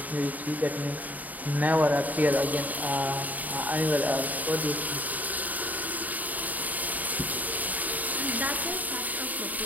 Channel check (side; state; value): left; late; 0.078 ms